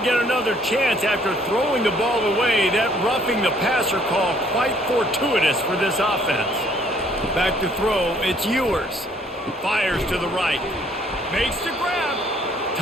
get another chance after throwing the ball away. That roughing the passer call quite fortuitous for this offense. Back to throw, it's Ewers. Fires to the right. Makes the grab.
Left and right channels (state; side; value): normal; both; correlation 0.62